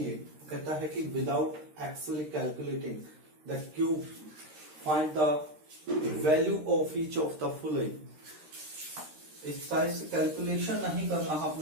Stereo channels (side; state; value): left; late; 13 ms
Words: कहता है कि without actually calculating the cube find the value of each of the following. इस टाइप से कैलकुलेशन नहीं करना है,